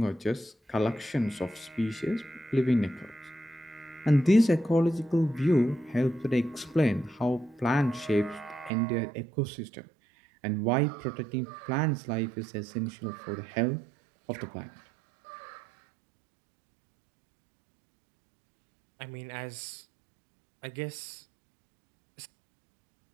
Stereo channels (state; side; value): drops out; left; at 8.7 s